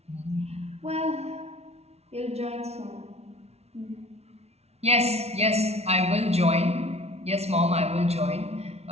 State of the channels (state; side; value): late; left; 0.31 ms